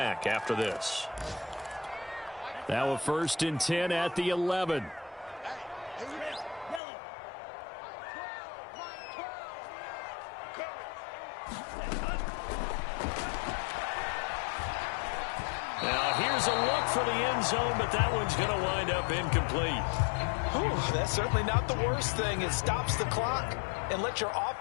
after this. Now a 1st and 10 at the 11. Here's a look for the end zone, but that one's going to wind up incomplete. Whew, that's certainly not the worst thing. It stops the clock and lets your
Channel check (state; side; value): drops out; right; at 6.8 s